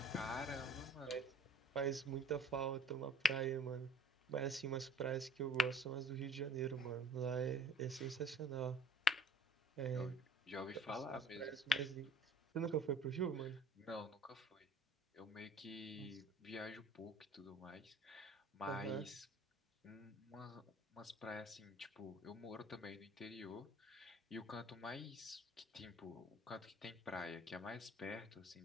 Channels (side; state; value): both; normal; correlation 0.49